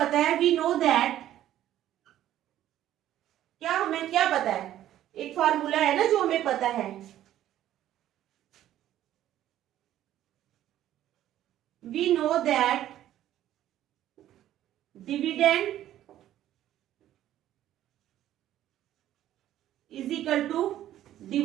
है, वी नो दैट, क्या हमें क्या पता है, एक फार्मूला है ना जो हमें पता है, we know that dividend is equal to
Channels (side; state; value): left; quieter; 12.5 dB